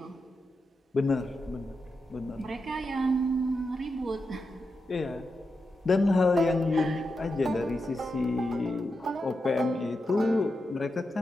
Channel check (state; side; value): normal; both; correlation 0.88